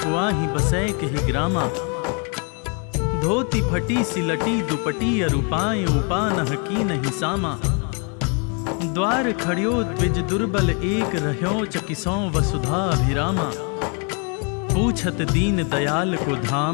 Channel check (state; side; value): quieter; right; 36.4 dB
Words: बसै के ही ग्रामा। धोती फटी सिलटी दुपटी अरूपाएं उपान कीन हिसामा। द्वार खड़ियो द्विज दुर्बल एक रह्यो चकिसों वसुधा अभिरामा। पूछत दीन दयाल को